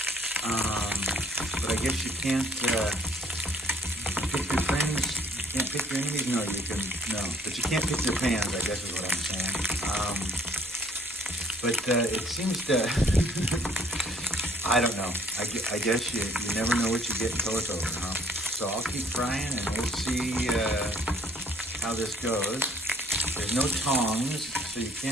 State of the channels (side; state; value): both; normal; correlation 0.58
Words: But I guess you can't pick your friends. You can't pick your enemies. No, you can. No, but you can't pick your pans, I guess is what I'm saying. It seems to. I don't know. I guess you never know what you get until it's over, huh? So I'll keep frying, and we'll see how this goes. There's no tongs, so you